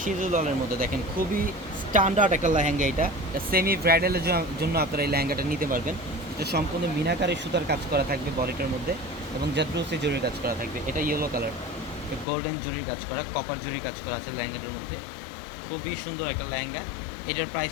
সিঁদুর লালের মধ্যে দেখেন, খুবই স্ট্যান্ডার্ড একটা লেহেঙ্গা। এটা সেমি ব্রাইডালের জন্য আপনারা এই লেহেঙ্গাটা নিতে পারবেন। এটা সম্পূর্ণ মিনাকারি সুতার কাজ করা থাকবে বডিটার মধ্যে, এবং জাদ্রুসি জরির কাজ করা থাকবে। এটা ইয়েলো কালার, গোল্ডেন জরির কাজ করা, কপার জরির কাজ করা আছে লেহেঙ্গাটার মধ্যে। খুবই সুন্দর একটা লেহেঙ্গা। এটার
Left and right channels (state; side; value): drops out; right; at 12.2 s